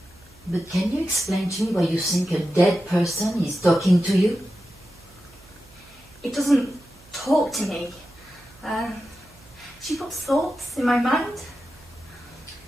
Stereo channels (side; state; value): right; noise; hum, 27 dB below the sound